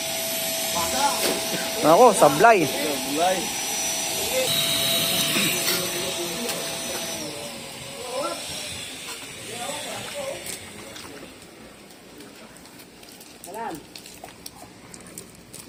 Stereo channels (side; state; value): both; identical; correlation 1.00